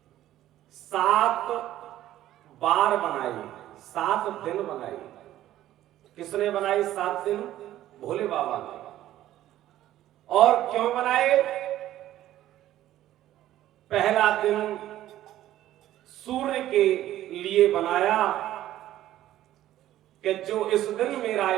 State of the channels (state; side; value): quieter; left; 13.4 dB